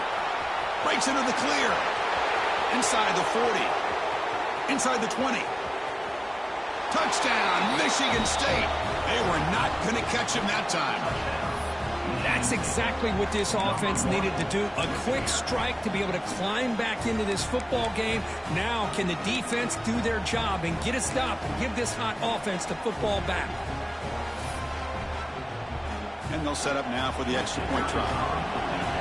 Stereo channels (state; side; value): identical; both; correlation 1.00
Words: Breaks into the clear. Inside the 40. Inside the 20. Touchdown, Michigan State. They were not going to catch him that time. That's exactly what this offense needed to do. A quick strike to be able to climb back into this football game. Now, can the defense do their job and get a stop and give this hot offense the football back? And they'll set up now for the extra point try.